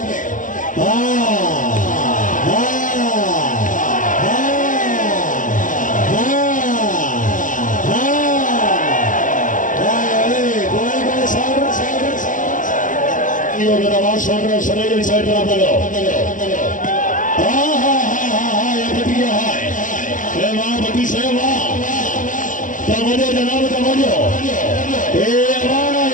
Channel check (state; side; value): late; right; 0.38 ms